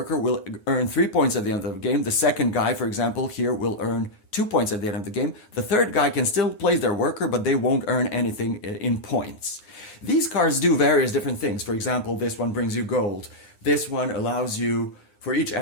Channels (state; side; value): late; right; 9.6 ms